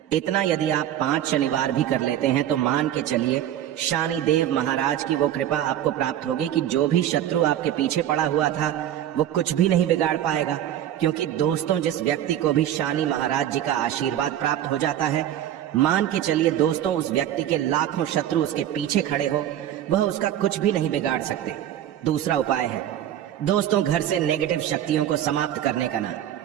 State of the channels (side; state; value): left; quieter; 11.4 dB